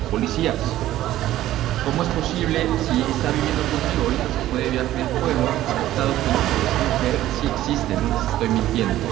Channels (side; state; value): left; quieter; 14.0 dB